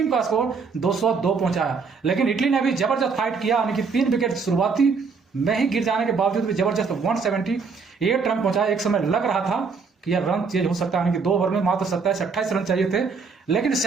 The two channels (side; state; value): left; quieter; 5.0 dB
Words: का स्कोर 202 पहुंचाया। लेकिन इटली ने भी जबरदस्त फाइट किया। यानी कि 3 विकेट शुरुआती में ही गिर जाने के बावजूद भी जबरदस्त 178 रन पहुंचाया। एक समय लग रहा था कि यह रन चेंज हो सकता है, यानी कि 2 ओवर में मात्र 27-28 रन चाहिए थे। लेकिन